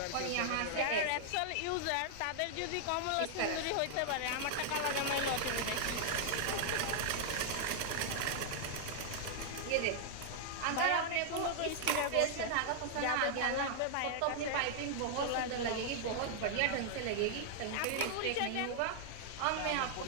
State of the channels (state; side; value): different; both; correlation -0.01